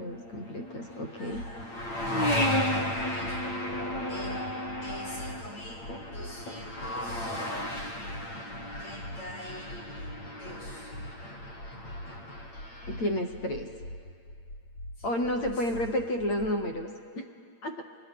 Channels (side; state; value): right; late; 8.8 ms